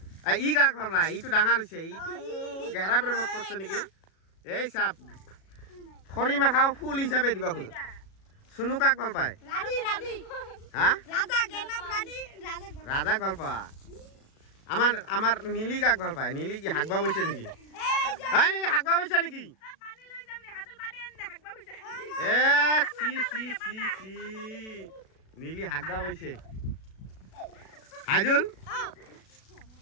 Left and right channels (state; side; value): late; right; 37 ms